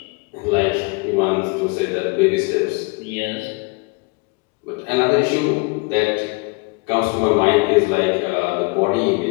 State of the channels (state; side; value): quieter; right; 29.1 dB